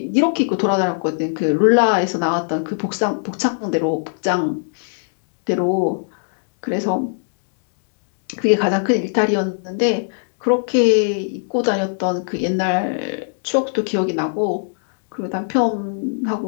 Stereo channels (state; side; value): silent; right; digital silence